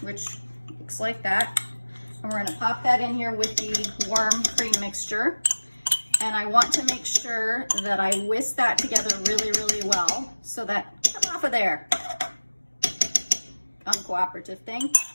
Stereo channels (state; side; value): inverted; both; correlation -1.00